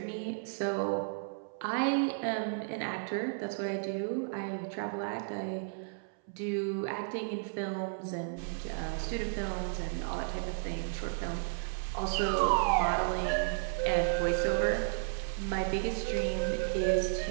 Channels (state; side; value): silent; left; 56 dB below the other